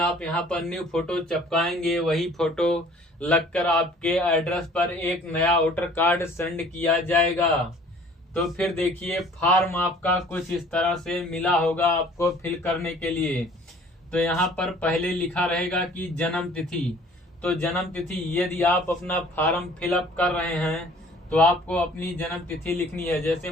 आप यहाँ पर न्यू फोटो चिपकाएंगे वही फोटो लगकर आपके एड्रेस पर एक नया वोटर कार्ड सेंड किया जाएगा। तो फिर देखिए फॉर्म आपका कुछ इस तरह से मिला होगा आपको फिल करने के लिए। तो यहाँ पर पहले लिखा रहेगा कि जन्म तिथि। तो जन्म तिथि, यदि आप अपना फॉर्म फिलअप कर रहे हैं तो आपको अपनी जन्म तिथि लिखनी है। जैसे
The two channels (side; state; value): both; normal; correlation 0.52